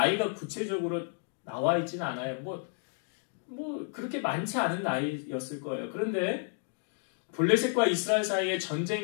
구체적으로 나와 있지는 않아요. 뭐 그렇게 많지 않은 나이였을 거예요. 그런데 블레셋과 이스라엘 사이에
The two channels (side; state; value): right; silent; 56 dB below the other